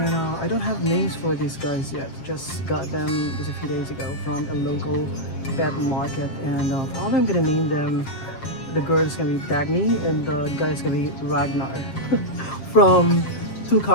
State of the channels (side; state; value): right; late; 7.6 ms